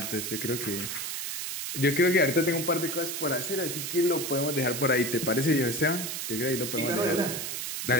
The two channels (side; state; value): right; noise; hiss, 4 dB below the sound